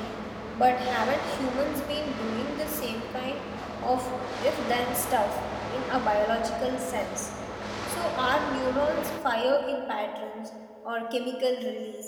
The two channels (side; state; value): both; identical; correlation 1.00